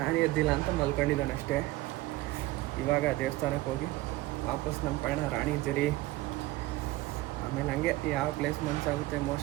ಎದ್ದಿಲ್ಲ ಅಂತ ಮಲ್ಕೊಂಡಿದ್ದಾನೆ ಅಷ್ಟೇ. ಇವಾಗ ದೇವಸ್ಥಾನಕ್ಕೆ ಹೋಗಿ ವಾಪಸ್ ನಮ್ಮ ಪಯಣ ರಾಣಿಜರಿ, ಆಮೇಲೆ ಹಂಗೆ ಯಾವ ಪ್ಲೇಸ್ ಮನಸ್ಸಾಗುತ್ತೆ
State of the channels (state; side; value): quieter; left; 18.4 dB